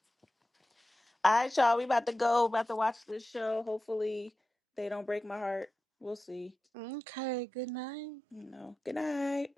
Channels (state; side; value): normal; both; correlation 0.93